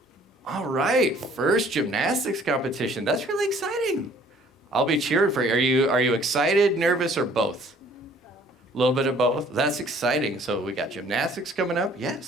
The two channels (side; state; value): both; normal; correlation 0.56